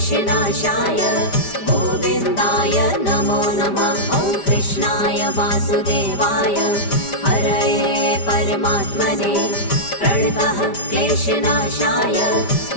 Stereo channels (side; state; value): right; late; 5.1 ms